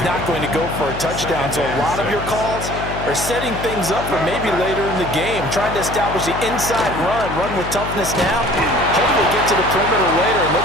not going to go for a touchdown. So a lot of your calls are setting things up for maybe later in the game, trying to establish the inside run with toughness now, hopefully get to the perimeter later. And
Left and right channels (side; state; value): left; noise; hum, 7 dB below the sound